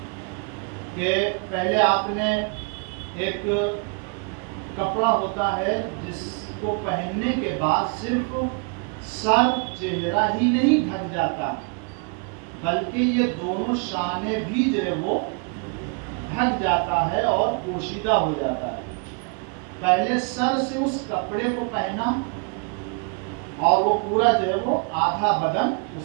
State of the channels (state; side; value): quieter; left; 36.0 dB